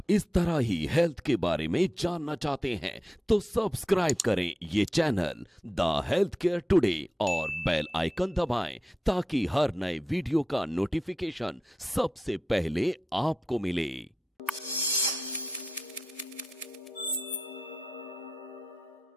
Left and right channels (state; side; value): normal; both; correlation 0.91